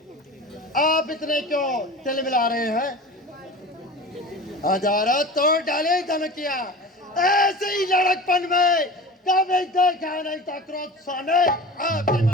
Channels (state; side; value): normal; both; correlation 0.35